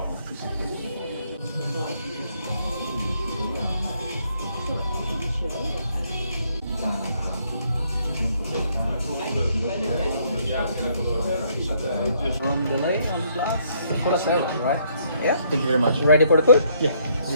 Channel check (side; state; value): both; inverted; correlation -0.69